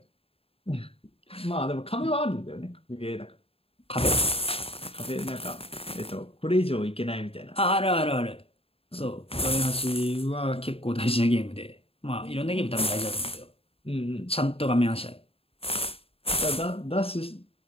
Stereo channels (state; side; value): late; right; 0.28 ms